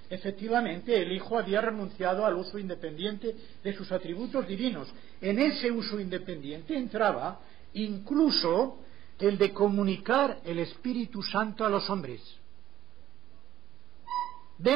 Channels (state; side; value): quieter; left; 12.3 dB